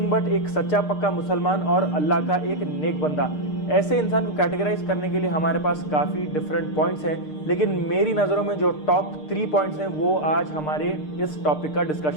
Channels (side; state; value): right; late; 6.6 ms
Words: but एक सच्चा पक्का मुसलमान और अल्लाह का एक नेक बंदा। ऐसे इंसान को कैटेगराइज करने के लिए हमारे पास काफ़ी डिफरेंट पॉइंट्स हैं, लेकिन मेरी नज़रों में जो टॉप 3 पॉइंट्स हैं वो आज हमारे इस टॉपिक का